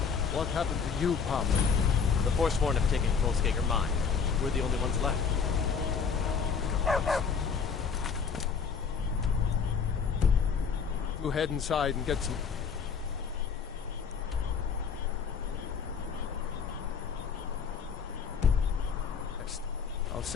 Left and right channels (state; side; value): quieter; right; 6.1 dB